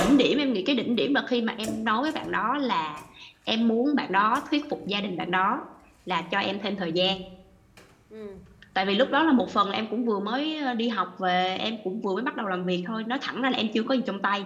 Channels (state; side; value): identical; both; correlation 1.00